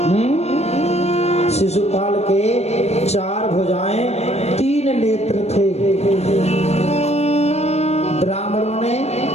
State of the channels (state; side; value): late; right; 0.31 ms